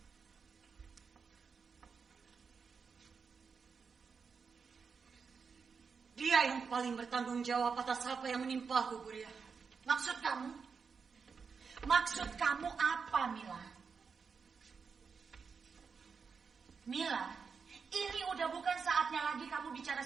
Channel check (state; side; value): quieter; left; 5.6 dB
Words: Dia yang paling bertanggung jawab atas apa yang menimpaku, Buria. Maksud kamu? Maksud kamu apa, Mila? Mila, ini udah bukan saatnya lagi kamu bicara